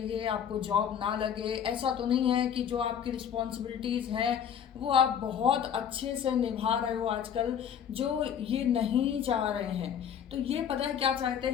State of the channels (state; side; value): quieter; right; 8.5 dB